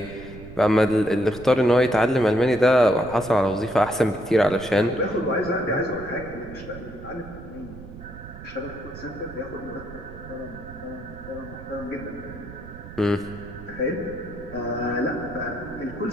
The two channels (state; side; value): noise; right; rumble, 14 dB below the sound